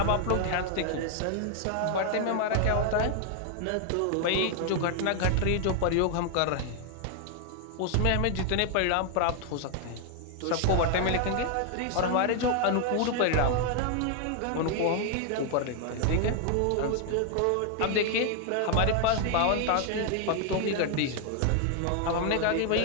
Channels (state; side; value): different; both; correlation 0.00